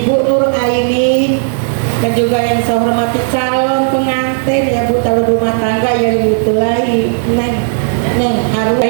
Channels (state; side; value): silent; left; digital silence